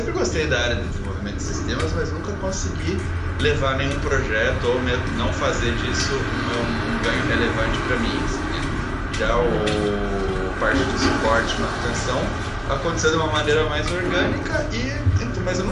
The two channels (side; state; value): both; identical; correlation 1.00